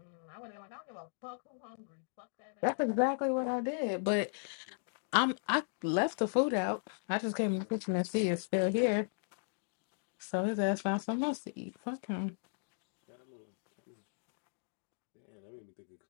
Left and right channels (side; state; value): right; silent; digital silence